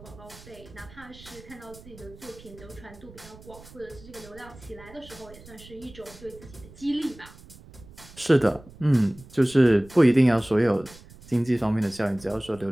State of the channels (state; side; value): noise; right; rumble, 20 dB below the sound